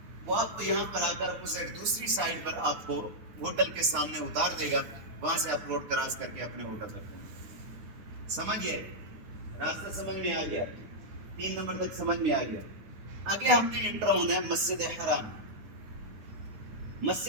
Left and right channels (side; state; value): left; late; 9.6 ms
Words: وہ آپ کو یہاں پر آ کر اپوزٹ دوسری سائڈ پر آپ کو ہوٹل کے سامنے اتار دے گا. وہاں سے آپ روڈ کراس کر کے اپنے ہوٹل تک پہنچیں. سمجھ گئے؟ راستہ سمجھ میں آ گیا؟ 3 نمبر تک سمجھ میں آ گیا. آگے ہم نے انٹر ہونا ہے مسجد حرام.